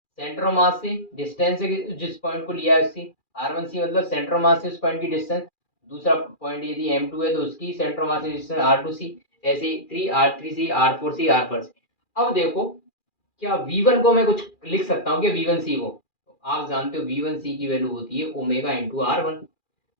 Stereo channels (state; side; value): late; right; 2.4 ms